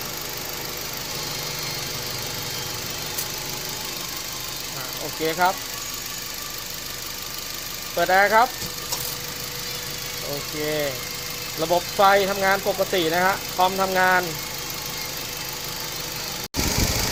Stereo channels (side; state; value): both; identical; correlation 1.00